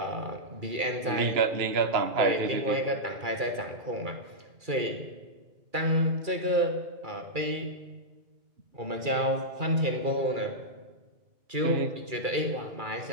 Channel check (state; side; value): late; left; 2.3 ms